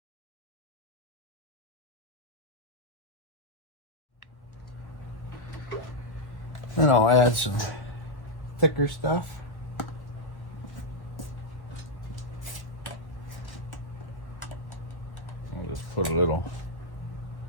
Then I'll add some thicker stuff. I'll just put a little,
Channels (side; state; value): right; late; 1.1 ms